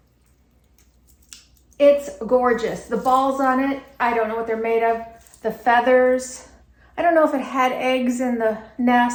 It's gorgeous. The balls on it, I don't know what they're made of. The feathers, I don't know if it had eggs in the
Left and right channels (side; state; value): both; identical; correlation 1.00